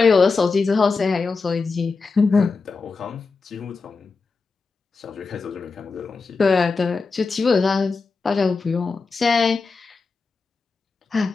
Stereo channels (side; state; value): right; quieter; 4.4 dB